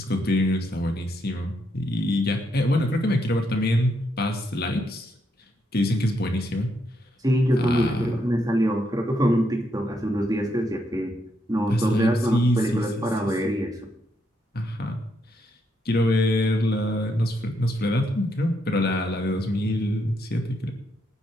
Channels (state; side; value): normal; both; correlation 0.78